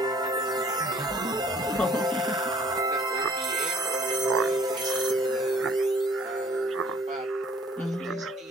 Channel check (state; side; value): normal; both; correlation 0.56